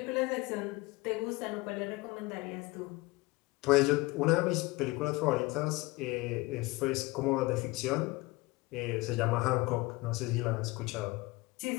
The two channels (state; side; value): quieter; right; 22.2 dB